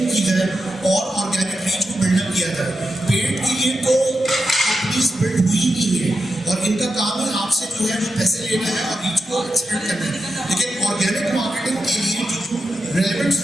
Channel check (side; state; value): both; normal; correlation 0.88